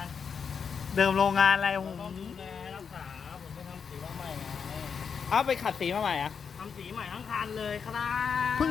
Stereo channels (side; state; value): right; quieter; 6.4 dB